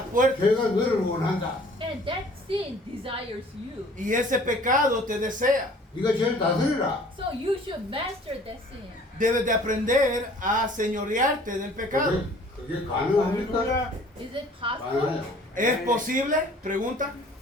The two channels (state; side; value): normal; both; correlation 0.52